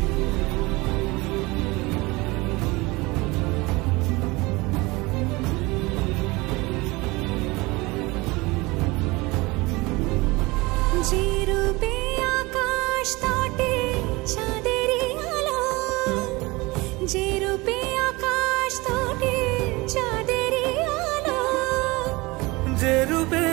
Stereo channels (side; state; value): left; quieter; 23.1 dB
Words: যে রূপে আকাশ তটে চাঁদেরই আলো যে রূপে আকাশ তটে চাঁদেরই আলো যে রূপে